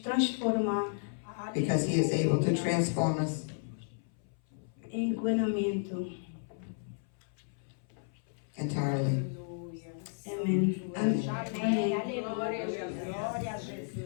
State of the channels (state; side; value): silent; right; 56 dB below the other